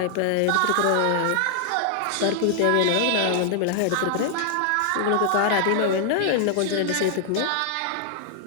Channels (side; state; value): both; different; correlation 0.00